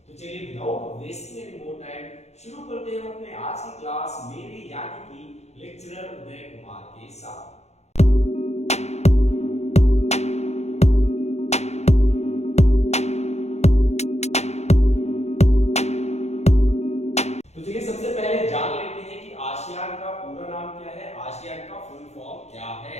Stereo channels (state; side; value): late; right; 0.32 ms